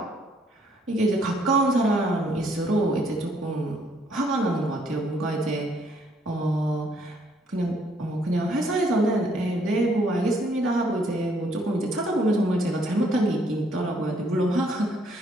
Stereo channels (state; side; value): normal; both; correlation 0.67